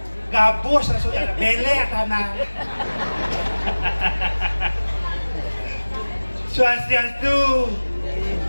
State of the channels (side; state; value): both; inverted; correlation -1.00